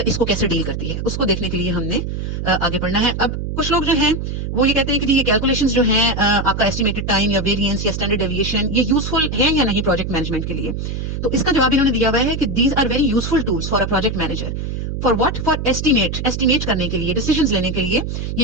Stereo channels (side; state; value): right; noise; hum, 4 dB below the sound